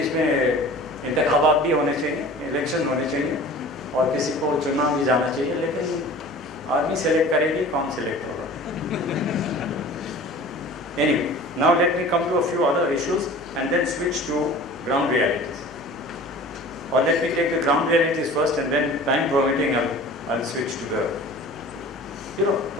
में इंतखाबात भी होने चाहिए, इलेक्शन होने चाहिए, और किसी को चुनाव भी जाना चाहिए, लेकिन आदमी सेलेक्ट करेगी, कौन सेलेक्ट होगा? Anyway, now let me come to a few other issues and then switch to ground realities. Or let me take the ground realities first and then, time permitting, I'll switch to the,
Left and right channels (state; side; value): normal; both; correlation 0.42